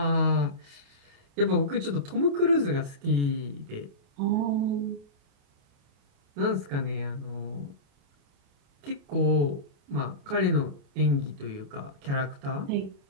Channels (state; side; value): late; left; 28 ms